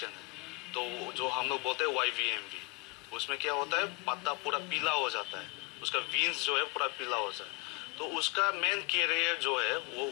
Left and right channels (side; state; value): right; quieter; 28.2 dB